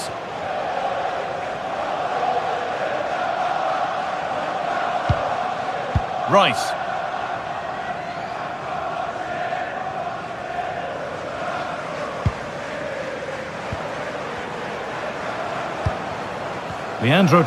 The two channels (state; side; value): identical; both; correlation 1.00